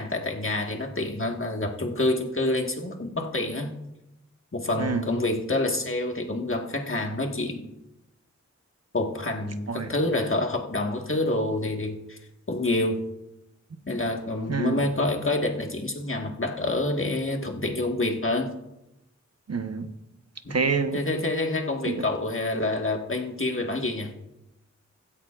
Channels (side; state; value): both; normal; correlation 0.21